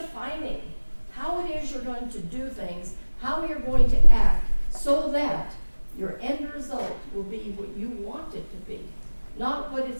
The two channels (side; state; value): both; inverted; correlation -1.00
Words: how it is you're going to do things, how you're going to act, so that your end result will be what you want it to be, not what